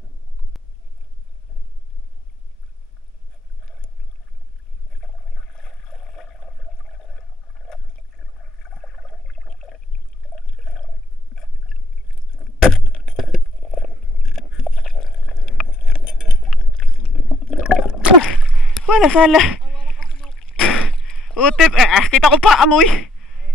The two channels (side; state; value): both; normal; correlation 0.72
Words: Wala sala. Utip, kita ko pa amoy.